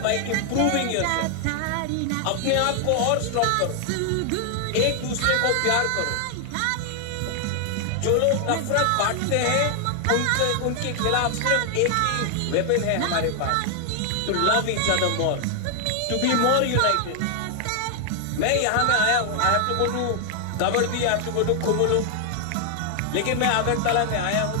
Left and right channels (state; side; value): different; both; correlation 0.00